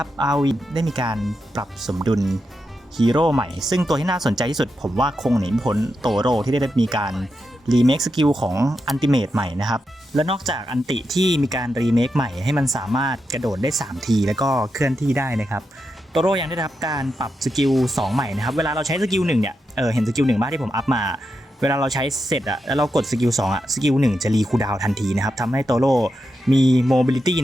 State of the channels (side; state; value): both; normal; correlation 0.86